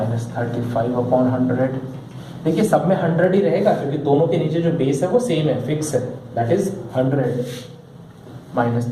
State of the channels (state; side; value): identical; both; correlation 1.00